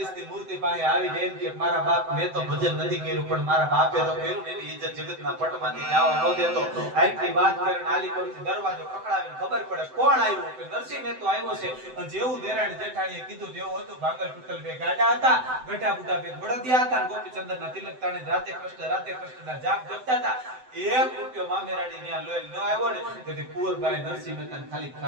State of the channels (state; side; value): late; left; 7.8 ms